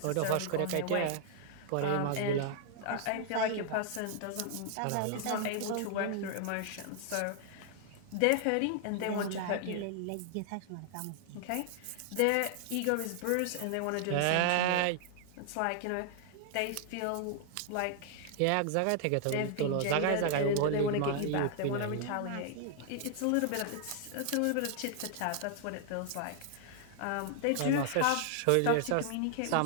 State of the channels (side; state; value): both; different; correlation 0.00